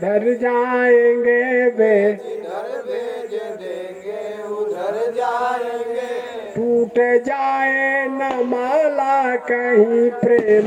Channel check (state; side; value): identical; both; correlation 1.00